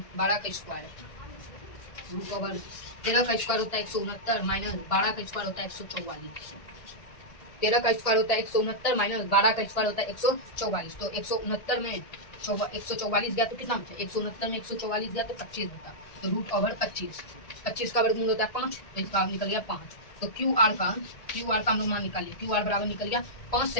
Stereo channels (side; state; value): right; late; 1.7 ms